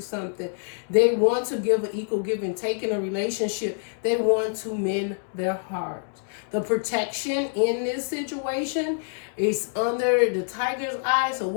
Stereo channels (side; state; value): right; silent; digital silence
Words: something. They want to give an equal give and take in a relationship. They want to mend their heart. The protection in this situation is under the tiger's eye. So